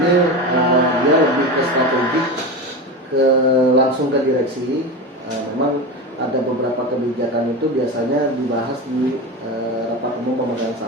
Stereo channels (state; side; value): normal; both; correlation 0.23